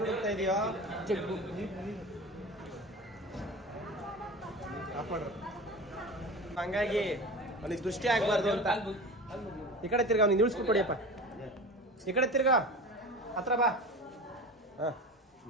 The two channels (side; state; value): both; normal; correlation 0.32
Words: ಹುಡುಕ್ತಾ ಇದೆಯೋ? ಜಗ್ಗು ಹಂಗಾಗಿ ಅವನಿಗೆ ದೃಷ್ಟಿ ಆಗ್ಬಾರ್ದು ಅಂತ ಈ ಕಡೆ ತಿರ್ಗ ಅವ್ನಿಗೆ ನಿಲ್ಸ್ಬಿಟ್ಟು ಕೊಡಿಯಪ್ಪ. ಈ ಕಡೆ ತಿರ್ಗ ಹತ್ರ ಬಾ.